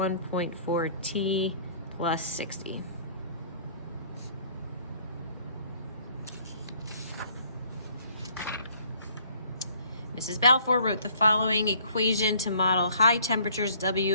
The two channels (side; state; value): both; inverted; correlation -0.58